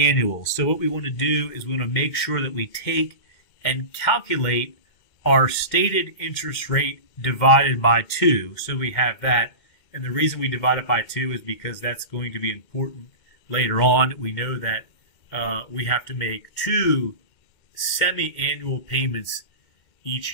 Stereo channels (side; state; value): right; late; 2.2 ms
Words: So what we want to do is we want to make sure that we take and calculate our stated interest rate divided by 2. So we have that. And the reason we divide it by 2 is because that's going to be important later on. We know that we have to make 2 semi-annual payments each